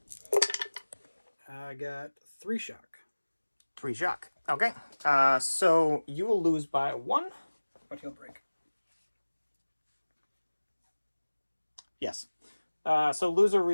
I got 3 shock, 3 shock. Okay. So you will lose by 1. but he'll break. Yes. So loser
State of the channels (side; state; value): both; inverted; correlation -1.00